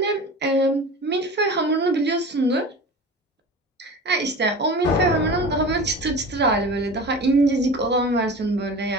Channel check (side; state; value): both; normal; correlation 0.35